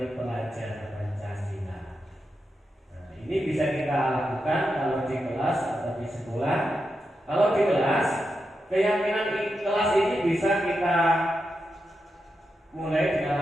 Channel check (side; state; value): both; normal; correlation 0.87